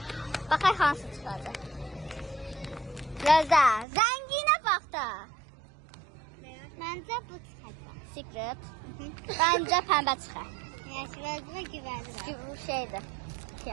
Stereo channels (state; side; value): drops out; left; at 3.9 s